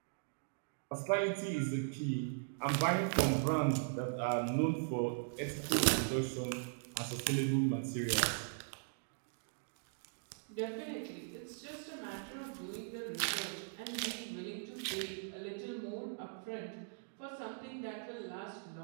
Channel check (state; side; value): silent; left; digital silence